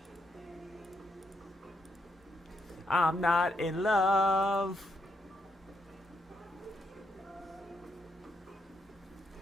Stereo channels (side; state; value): both; normal; correlation 0.79